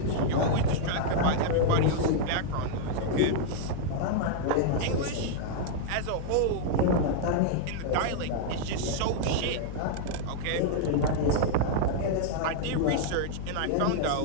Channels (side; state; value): both; different; correlation -0.01